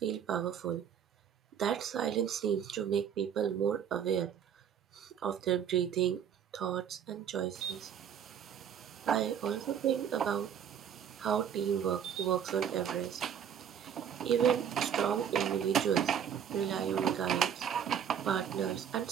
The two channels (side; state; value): left; quieter; 8.6 dB